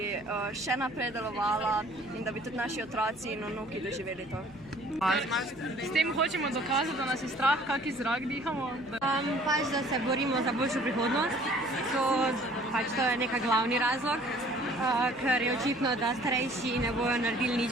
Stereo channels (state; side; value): noise; left; hum, 21 dB below the sound